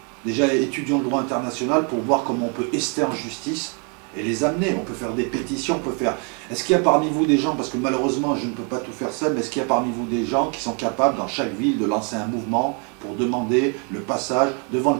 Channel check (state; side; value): quieter; left; 37.1 dB